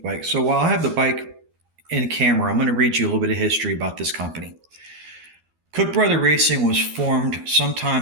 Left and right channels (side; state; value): left; late; 13 ms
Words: bike. So while I have the bike in camera, I'm going to read you a little bit of history about this company. Cook Bros Racing was formed